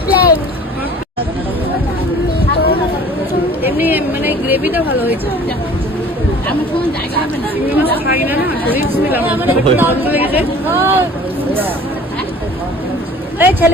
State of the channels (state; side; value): normal; both; correlation 0.47